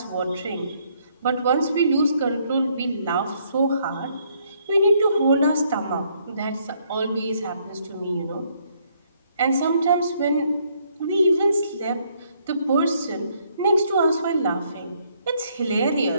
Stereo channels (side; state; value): both; inverted; correlation -0.69